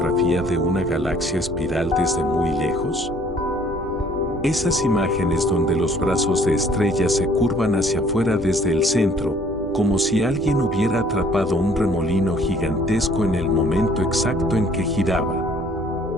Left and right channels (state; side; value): normal; both; correlation 0.58